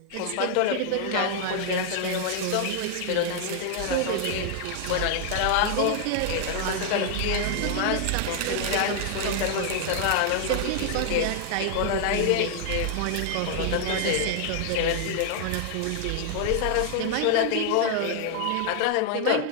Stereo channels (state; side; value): different; both; correlation 0.00